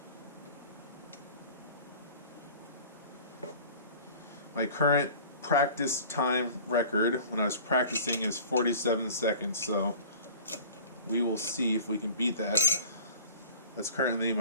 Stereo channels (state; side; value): inverted; both; correlation -0.43